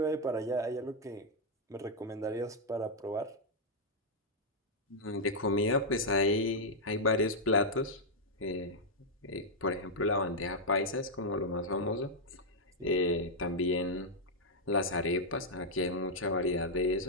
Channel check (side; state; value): both; normal; correlation -0.03